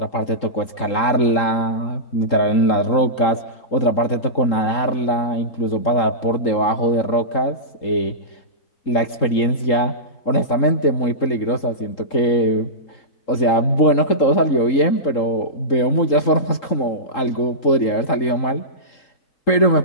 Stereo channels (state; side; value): late; right; 3.8 ms